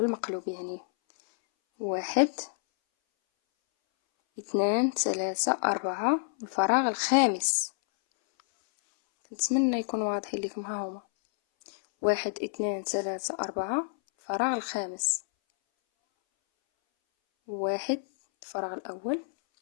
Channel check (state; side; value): silent; right; 59 dB below the other